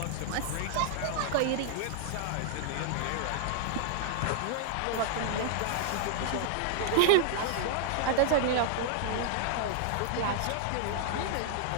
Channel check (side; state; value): both; different; correlation 0.00